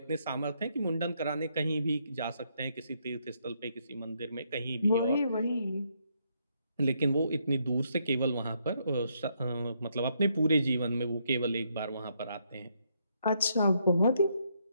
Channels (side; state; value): both; inverted; correlation -0.74